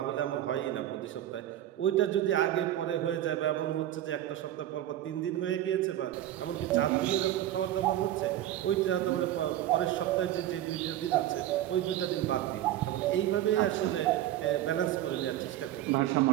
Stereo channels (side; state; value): left; quieter; 12.8 dB